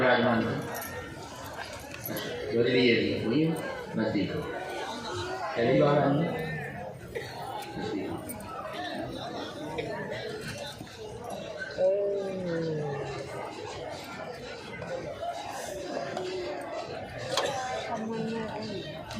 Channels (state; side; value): identical; both; correlation 1.00